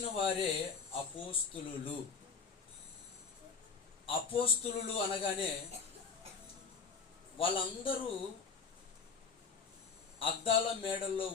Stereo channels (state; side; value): quieter; right; 5.5 dB